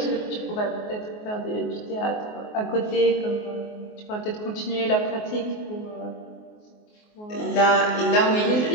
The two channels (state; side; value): late; right; 24 ms